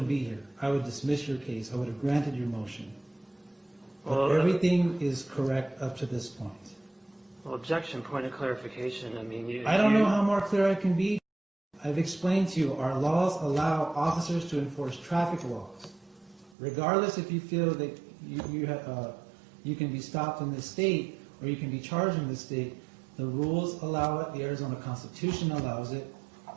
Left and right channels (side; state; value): left; drops out; at 16.6 s